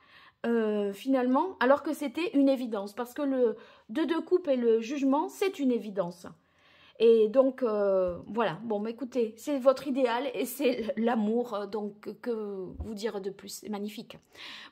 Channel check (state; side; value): identical; both; correlation 1.00